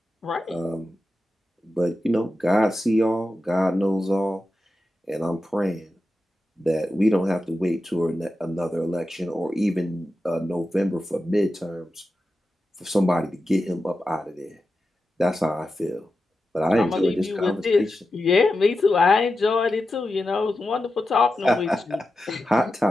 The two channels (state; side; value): normal; both; correlation 0.91